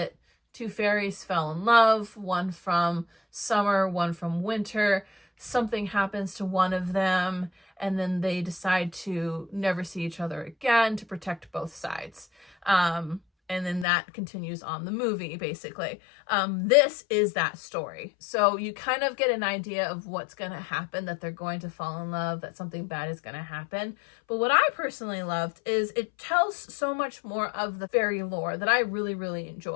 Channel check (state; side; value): drops out; right; at 13.9 s